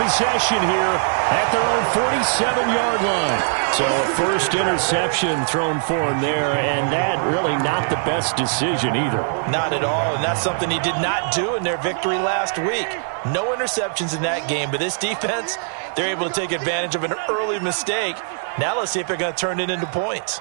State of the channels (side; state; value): left; silent; 58 dB below the other